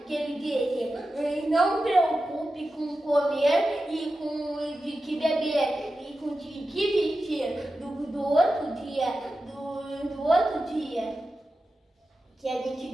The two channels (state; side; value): normal; both; correlation 0.92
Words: que ele disse: não preocupe com comer e com de que beber e com de que vestir do outro dia. Que a